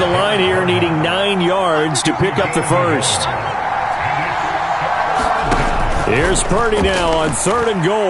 line here needing 9 yards to pick up the first. Here's Purdy now on 3rd and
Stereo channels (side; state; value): both; identical; correlation 1.00